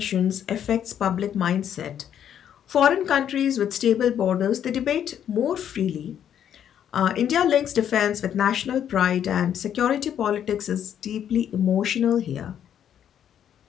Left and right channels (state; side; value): quieter; right; 9.5 dB